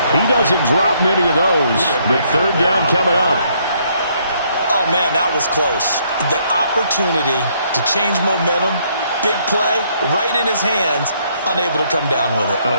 he doesn't drop many of those. But third down coming up. Oh, man, that was close. The opportunity to change momentum, big play, right in his hands, unable to come down with it.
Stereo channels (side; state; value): both; inverted; correlation -0.69